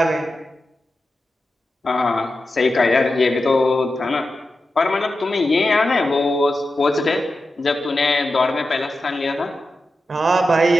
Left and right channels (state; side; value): normal; both; correlation 0.91